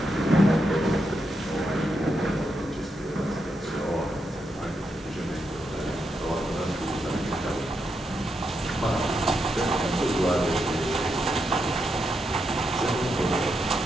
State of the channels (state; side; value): normal; both; correlation 0.83